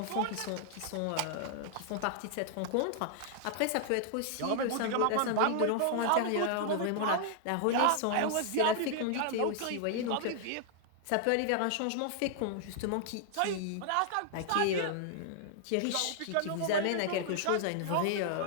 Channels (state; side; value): different; both; correlation 0.00